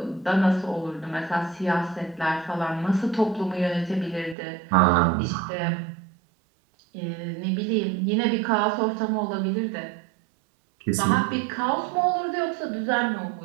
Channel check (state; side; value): drops out; left; at 4.4 s